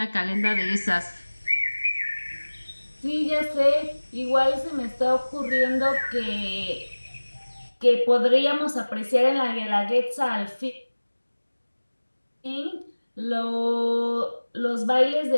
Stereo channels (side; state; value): both; inverted; correlation -1.00